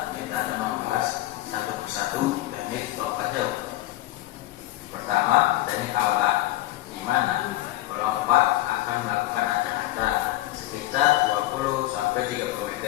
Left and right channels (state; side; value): quieter; right; 16.4 dB